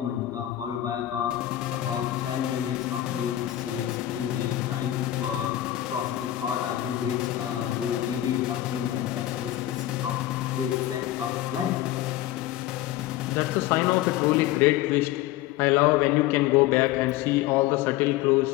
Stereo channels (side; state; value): right; quieter; 14.0 dB